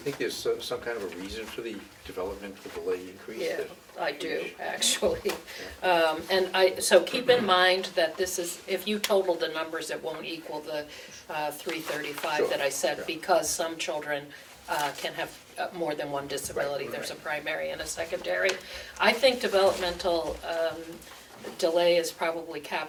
think there's some kind of a reason for the developmental delay increase? Yeah, that- I do, actually. And so keep in mind that this is, if you total the numbers, it won't equal the 335 Sure, that I said, yeah. because some children can have more than one disability. Right, There's a right. primary and a secondary. I think developmental delay is probably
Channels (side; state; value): both; identical; correlation 1.00